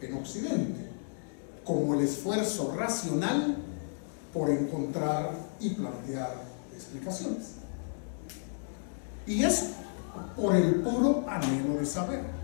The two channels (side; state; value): right; silent; digital silence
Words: en Occidente, como el esfuerzo racional por encontrar y plantear explicaciones. Y eso por el puro anhelo de saber,